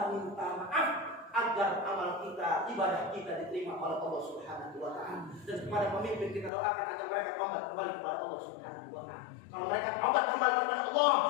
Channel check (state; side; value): drops out; right; at 6.5 s